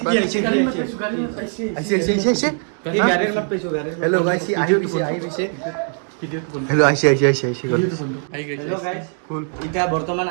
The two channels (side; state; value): left; silent; 56 dB below the other